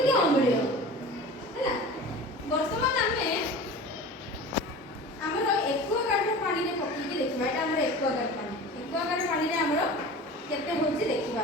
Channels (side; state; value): both; normal; correlation 0.37